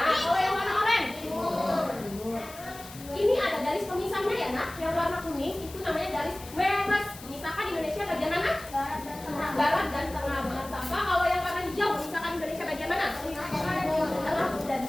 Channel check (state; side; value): noise; left; hiss, 17 dB below the sound